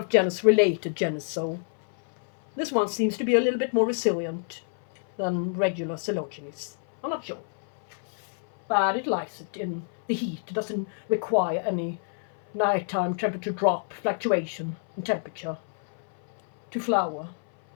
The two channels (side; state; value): right; silent; 57 dB below the other